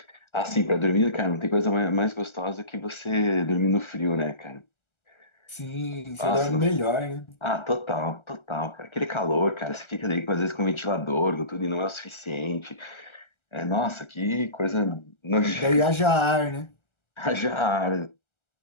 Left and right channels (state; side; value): late; right; 1.3 ms